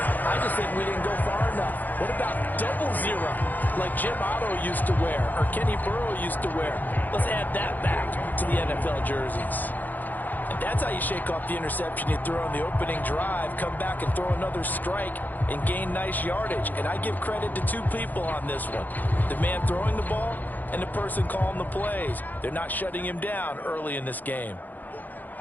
I just think we didn't go far enough. What about double zero, like Jim Otto used to wear or Kenny Burrow used to wear? Let's add that back to the NFL jerseys. And that's how you shake off the interception you throw on the opening drive, come back and throw another strike and gain nice yardage. And I give credit to two people on this one. The man throwing the ball and the person calling the plays. They're not shutting him down early in this game.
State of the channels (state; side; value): late; right; 0.084 ms